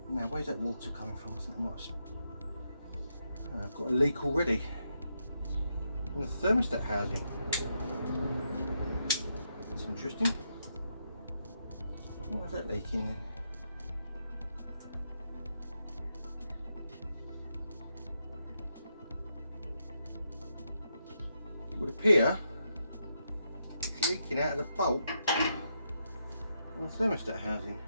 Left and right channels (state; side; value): inverted; both; correlation -0.81